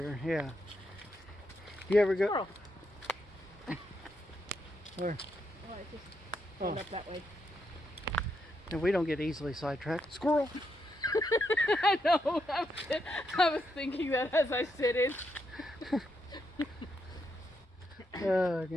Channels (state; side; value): normal; both; correlation 0.80